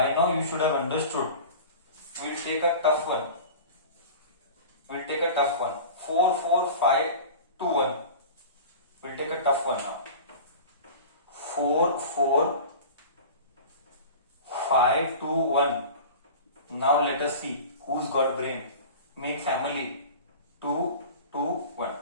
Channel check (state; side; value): inverted; both; correlation -0.36